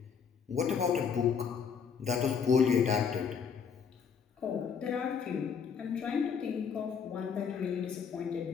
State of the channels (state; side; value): quieter; right; 6.7 dB